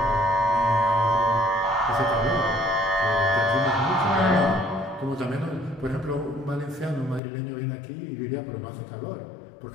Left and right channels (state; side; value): drops out; right; at 7.2 s